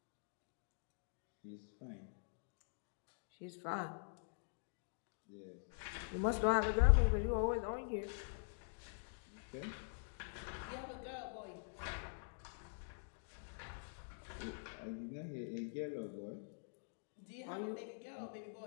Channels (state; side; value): silent; right; digital silence